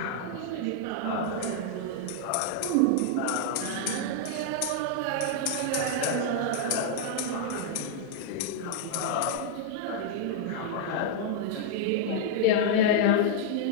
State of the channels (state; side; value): different; both; correlation -0.01